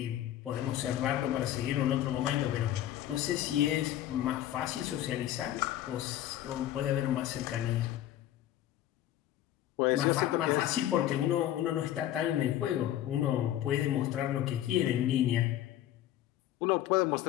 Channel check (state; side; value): quieter; right; 12.5 dB